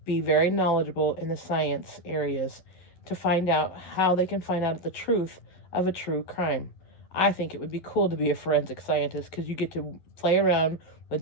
be very knowledgeable in the science areas to find out how they can find out the truth of a true crime. I think it would be cool to be a forensic scientist because you get to play around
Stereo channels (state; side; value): late; right; 11 ms